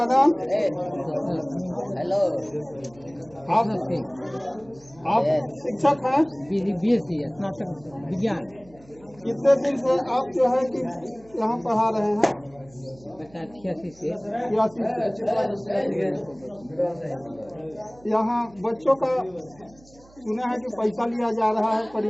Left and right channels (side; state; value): right; noise; hum, 26 dB below the sound